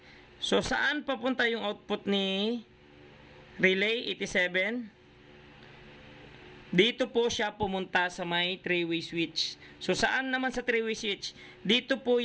So, saan papunta yung output ni relay 87? Dito po siya pumunta sa may 3-way switch. So, saan naman sa 3-way switch? Dito po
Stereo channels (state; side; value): identical; both; correlation 1.00